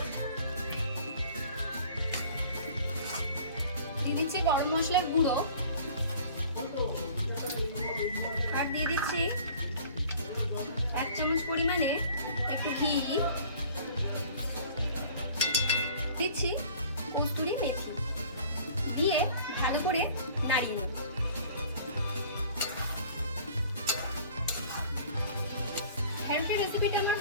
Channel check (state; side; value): inverted; both; correlation -0.49